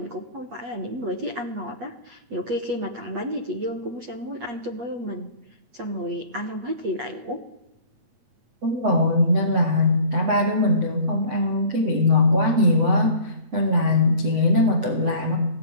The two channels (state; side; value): late; left; 8.0 ms